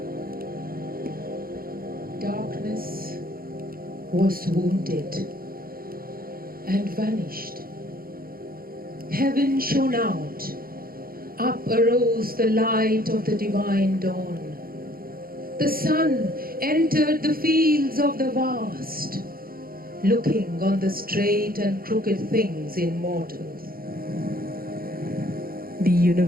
Darkness was wounded and vanished. Heaven shone out. Up arose the light of the divine dawn. The sun entered the fields of the vast, looking on the straight and crooked things in mortals. The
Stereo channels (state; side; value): late; left; 0.43 ms